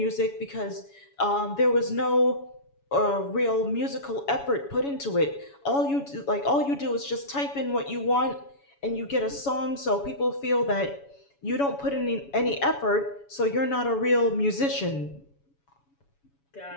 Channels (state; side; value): late; right; 7.1 ms